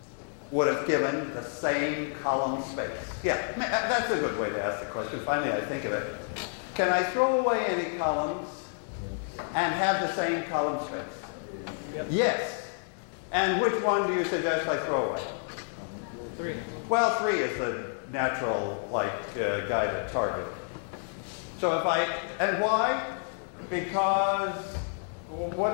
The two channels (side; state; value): right; silent; 58 dB below the other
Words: would have given the same column space? Yeah, that's a good way to ask the question. Finally, I think of it. Can I throw away any columns and have the same column space? Yep. Yes. And which one do you suggest I throw away? 3. Well, 3 is the natural guy to target. So if and why? Because